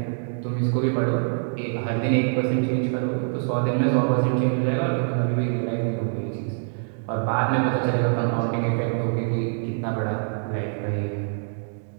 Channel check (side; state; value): left; silent; digital silence